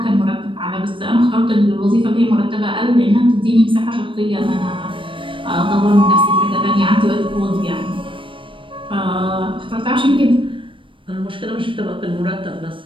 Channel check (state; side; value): late; left; 0.25 ms